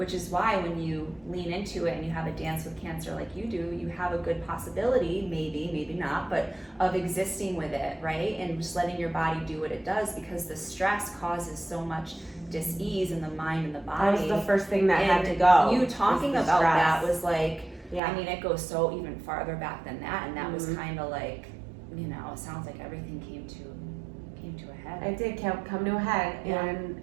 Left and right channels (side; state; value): left; drops out; at 18.0 s